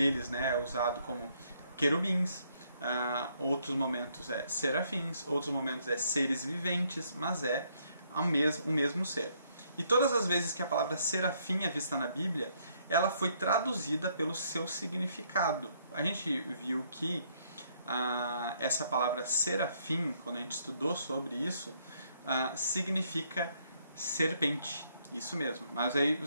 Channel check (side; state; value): both; inverted; correlation -0.70